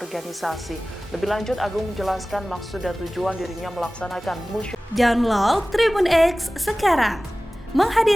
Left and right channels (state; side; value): normal; both; correlation 0.97